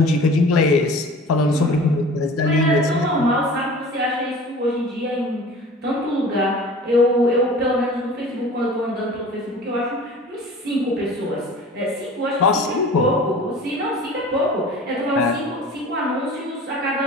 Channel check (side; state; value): both; normal; correlation 0.42